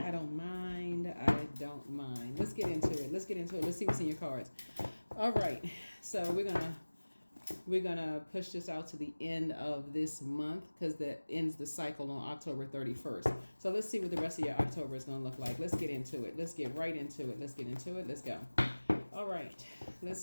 don't mind. I don't mind. Let's get into it. Let's get into it. Let's see what's in your cards. All right. So we're gonna push this out to the end of this month because that ends the cycle on October 31st. So let's see what the rest of your October is gonna look like. Let's get into it. Let's get right into it. Let's get into it. Let's go. All right, let's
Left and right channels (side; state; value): both; inverted; correlation -1.00